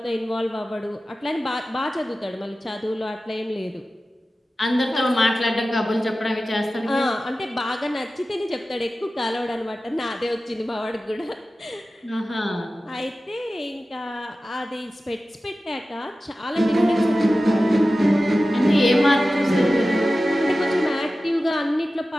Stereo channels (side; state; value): both; normal; correlation 0.95